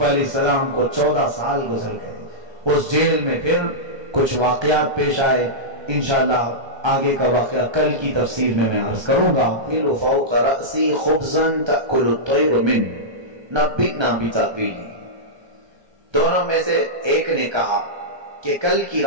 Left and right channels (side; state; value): left; late; 1.3 ms